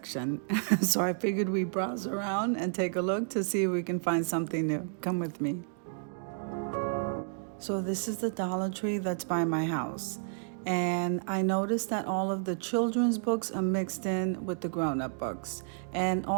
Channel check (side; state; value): left; silent; digital silence